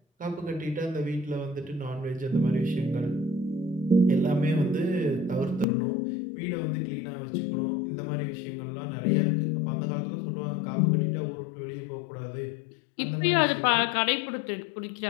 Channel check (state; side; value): drops out; right; at 5.7 s